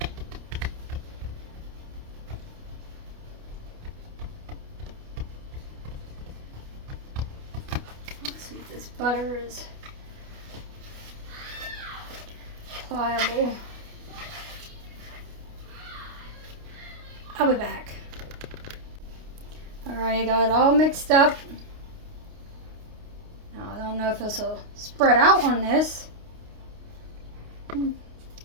butter is pliable. I'll be back. Alright, I got it all mixed up. Now I don't know if this will spread out on this. I'm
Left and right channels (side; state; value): left; late; 29 ms